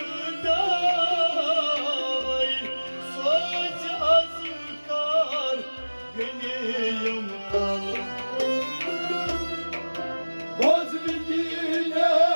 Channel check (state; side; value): inverted; both; correlation -1.00